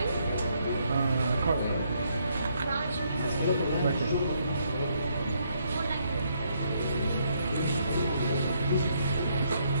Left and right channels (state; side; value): inverted; both; correlation -0.73